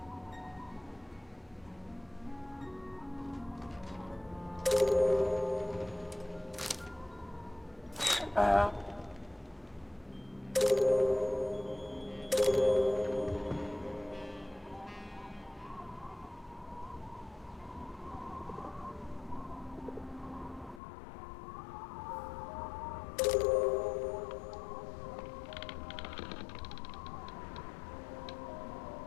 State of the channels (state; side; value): drops out; right; at 20.8 s